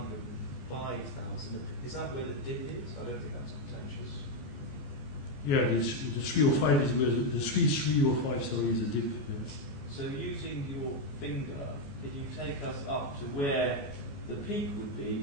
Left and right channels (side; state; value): right; late; 14 ms